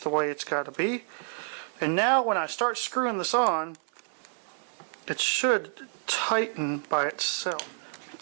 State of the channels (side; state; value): left; silent; 59 dB below the other